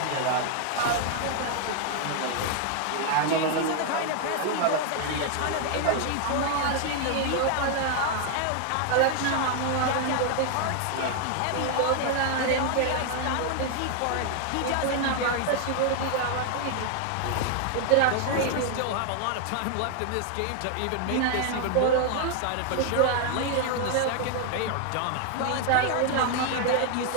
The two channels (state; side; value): different; both; correlation 0.00